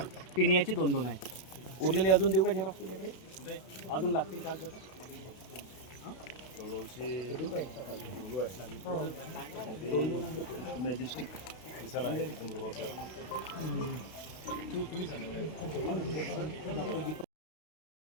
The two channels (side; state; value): right; late; 32 ms